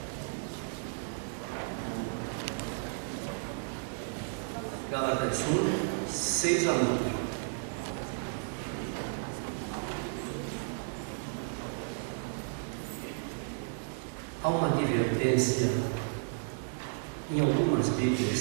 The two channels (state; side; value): silent; left; 56 dB below the other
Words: Gálatas 1, 6 a 9. Há uma advertência em algumas